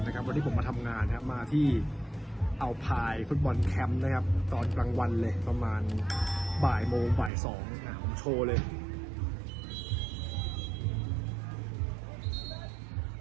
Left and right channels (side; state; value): left; drops out; at 7.3 s